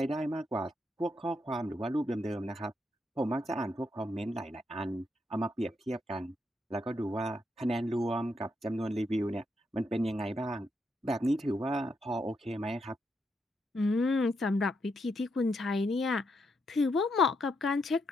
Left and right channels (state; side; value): normal; both; correlation 0.80